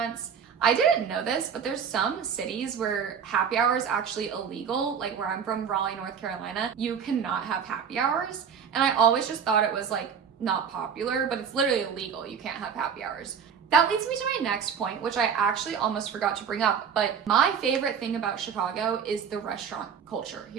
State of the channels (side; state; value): left; quieter; 7.2 dB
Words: I didn't know this, but there's some cities where happy hour is actually illegal. Like where I'm from, Raleigh, North Carolina, you cannot have happy hours. And I always just thought it was like not popular, but it's literally illegal. You can't have happy hours. That leads me to my next point, which I actually almost forgot to bring up, but my favorite thing about Chicago is the restaurant culture